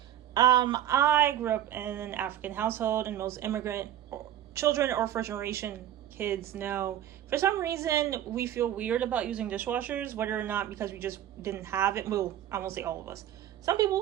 I grew up in an African household, and most immigrant children or first generation kids know for some reason we feel weird about using dishwashers, whether or not because we just didn't have it. Well, I won't say all of us. Some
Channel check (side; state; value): left; quieter; 11.5 dB